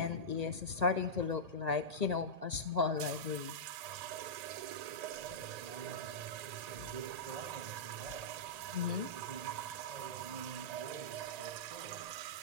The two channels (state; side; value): late; left; 1.8 ms